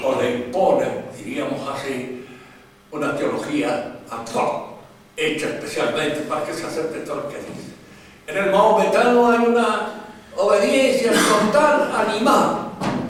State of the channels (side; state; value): both; identical; correlation 1.00